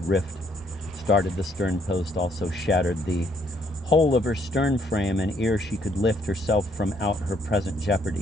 rift, started the stern post, also shattered the whole of her stern frame, and ere she could lift herself from out her present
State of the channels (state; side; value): normal; both; correlation 0.68